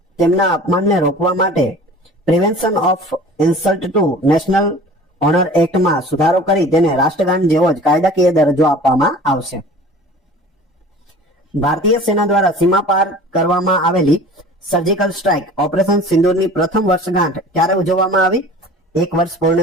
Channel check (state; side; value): normal; both; correlation 0.43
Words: તેમના અપમાનને રોકવા માટે prevention of insult to national honour એક્ટમાં સુધારો કરી તેને રાષ્ટ્રગાન જેવો જ કાયદાકીય દરજ્જો આપવામાં આવશે. ભારતીય સેના દ્વારા સીમા પાર કરવામાં આવેલી સર્જિકલ સ્ટ્રાઇક ઓપરેશન સિંદૂરની પ્રથમ વર્ષગાંઠ ક્યારે ઉજવવામાં આવી? 1 વર્ષ